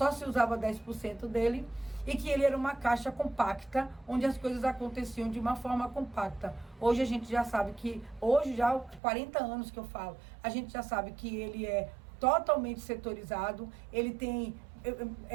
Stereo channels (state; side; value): drops out; left; at 9.0 s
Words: se usava 10% dele e que ele era uma caixa compacta, onde as coisas aconteciam de uma forma compacta. Hoje a gente já sabe que, hoje já há 40 anos que eu falo, a gente já sabe que ele é totalmente setorizado, ele tem